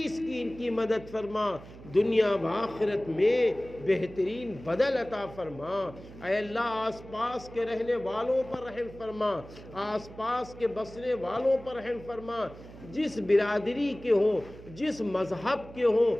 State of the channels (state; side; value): noise; right; hum, 17 dB below the sound